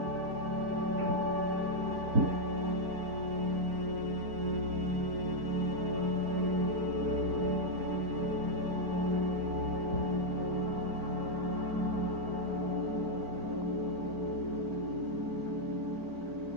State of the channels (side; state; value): left; late; 4.4 ms